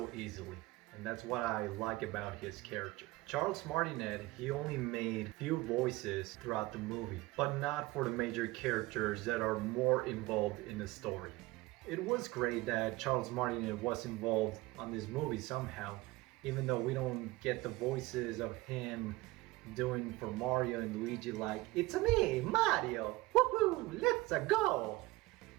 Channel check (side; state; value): left; quieter; 20.3 dB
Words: easily. And that's what I like about his character. Charles Martinet, he only made few voices throughout the movie, but not for the major characters that are more involved in the story. It was great that Charles Martinet was involved on this movie somehow, even though we don't get the voices of him doing for Mario and Luigi like, "It's me, Mario! Woohoo! Let's go!